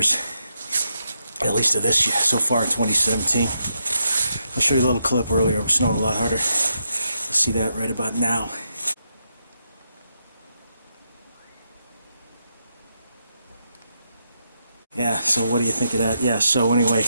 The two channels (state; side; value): inverted; both; correlation -0.82